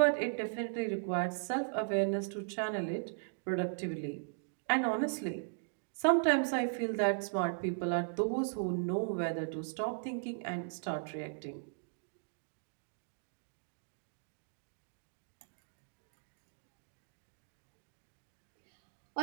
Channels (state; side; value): silent; left; digital silence